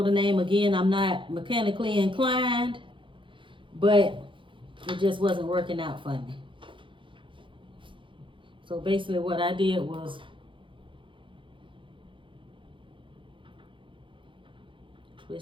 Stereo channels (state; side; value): late; left; 0.24 ms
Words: the name again. I'm not mechanically inclined, but it just wasn't working out for me. So basically what I did was